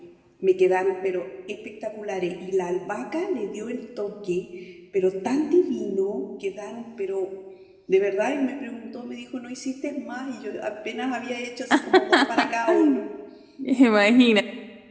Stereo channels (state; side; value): identical; both; correlation 1.00